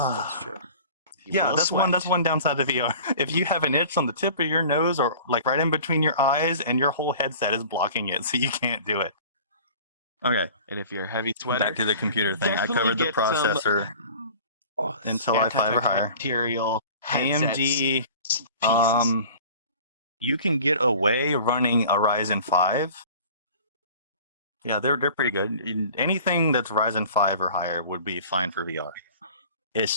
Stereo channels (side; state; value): both; inverted; correlation -0.44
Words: that's true. You Yeah, will that's sweat. one downside of VR. If you have an itch on the tip of your nose or like right in between your eyes and your whole headset is blocking it, so you can't do it. Okay, And if you're a heavy sweater, back to the computer thing. I definitely covered the get some processor, Oh, Intel i5 or higher. antibacterial headsets. AMD, pieces. you can get away running a Ryzen 5. Yeah, they're pretty good. Anything that's Ryzen 5 or higher would be fine for VR.